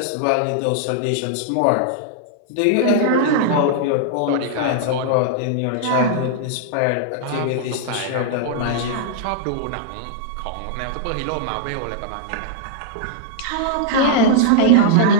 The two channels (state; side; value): different; both; correlation -0.01